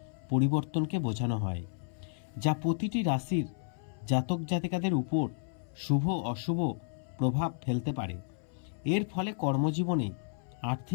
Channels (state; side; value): silent; right; 56 dB below the other